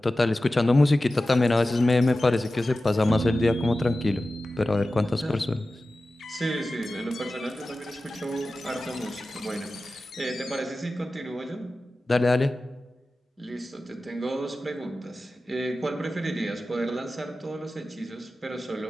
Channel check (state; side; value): normal; both; correlation 0.95